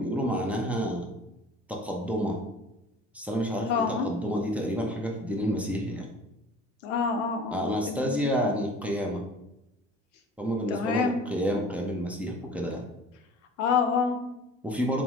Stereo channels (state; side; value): normal; both; correlation 0.45